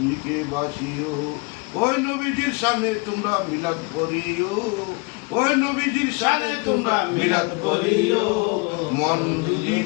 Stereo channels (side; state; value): right; quieter; 29.1 dB